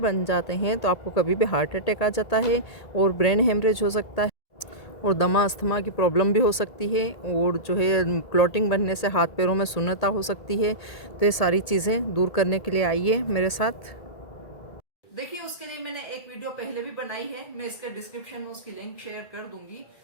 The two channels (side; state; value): right; late; 1.8 ms